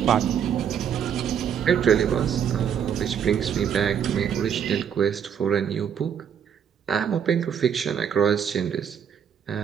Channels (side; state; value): left; quieter; 8.1 dB